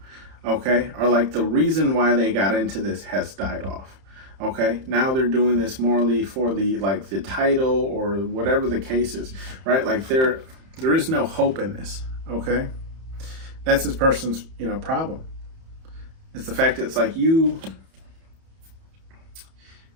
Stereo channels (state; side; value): late; left; 31 ms